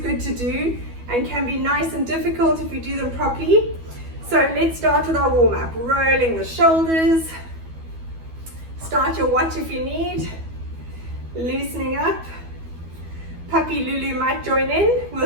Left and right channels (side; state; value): left; late; 12 ms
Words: to do and can be nice and difficult if you do them properly. So let's start with our warm-up. Rolling the shoulders. Start your watch if you need. Loosening up. Puppy Lulu might join in.